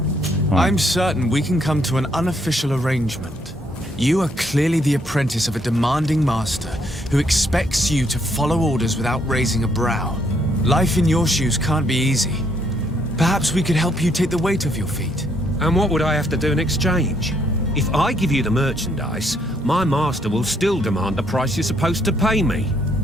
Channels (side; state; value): both; normal; correlation 0.71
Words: I'm certain we can come to an unofficial arrangement. You are clearly the apprentice of a demanding master who expects you to follow orders without raising a brow. Life in your shoes can't be easy. Perhaps we could help you take the weight off your feet. And what would I have to do in exchange? If I give you the merchandise, my master will still demand the price you're supposed to pay me.